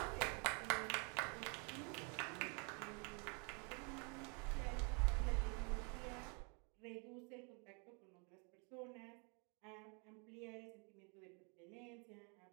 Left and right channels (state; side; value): quieter; left; 35.0 dB